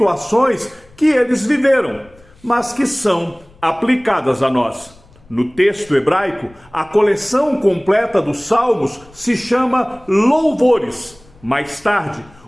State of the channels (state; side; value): noise; left; rumble, 27 dB below the sound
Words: que eles viveram, mas que são aplicadas a nós. No texto hebraico, a coleção completa dos Salmos se chama Louvores. Mais tarde,